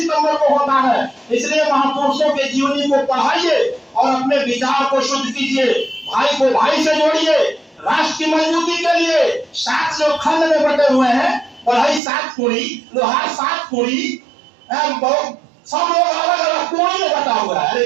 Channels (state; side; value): drops out; left; at 12.0 s